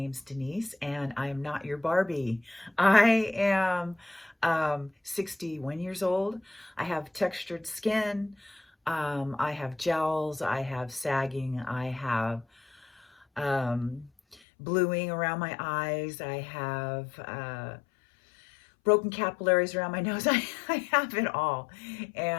Denise and I am not your Barbie. I am 61 years old. I have textured skin. I have gels. I have sagging. I have bluing around my eyes. I have broken capillaries around my nose. I have it all.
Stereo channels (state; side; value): drops out; right; at 14.4 s